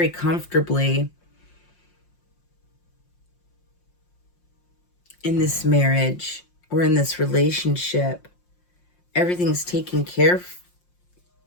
comfortably in this marriage or in this relationship, everything's taken care of.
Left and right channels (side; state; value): right; late; 5.6 ms